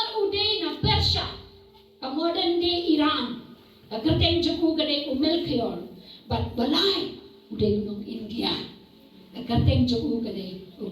uday na Persia ka modern day Iran ka kerteng juku kade Melchior but balay uday nung India ka kerteng juku kade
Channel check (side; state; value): both; identical; correlation 1.00